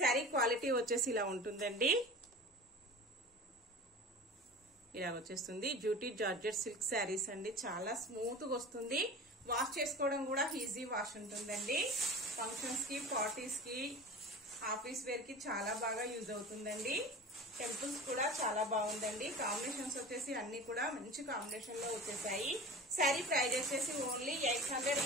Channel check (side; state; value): both; normal; correlation 0.36